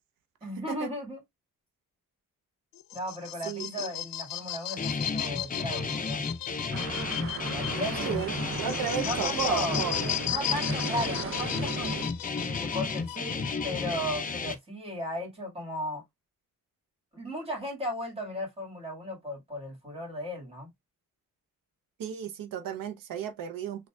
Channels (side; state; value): both; normal; correlation 0.26